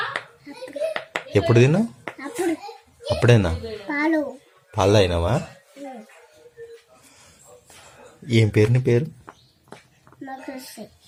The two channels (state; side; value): identical; both; correlation 1.00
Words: ఎప్పుడు తిన్నావు? అప్పుడు అప్పుడేనా? పాలు పాలు అయినావా? ఏం పేరు నీ పేరు? మోక్షి